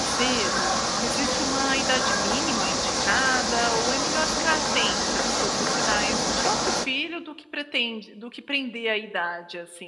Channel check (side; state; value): both; identical; correlation 1.00